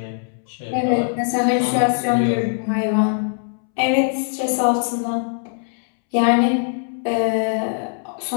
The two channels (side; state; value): right; silent; 65 dB below the other